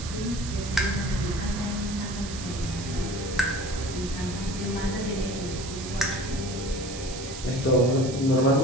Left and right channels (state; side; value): noise; right; hiss, 11 dB below the sound